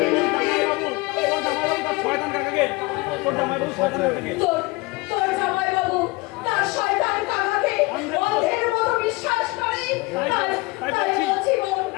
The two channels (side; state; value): right; quieter; 23.7 dB